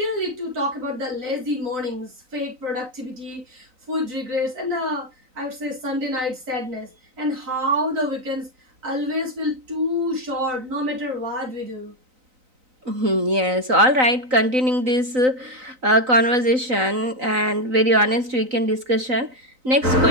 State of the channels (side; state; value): left; late; 3.9 ms